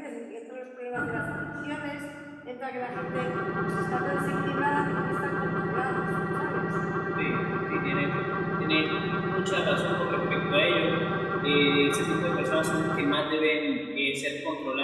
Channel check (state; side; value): identical; both; correlation 1.00